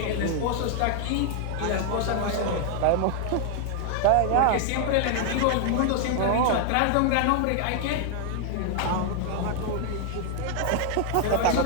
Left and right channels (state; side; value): different; both; correlation 0.00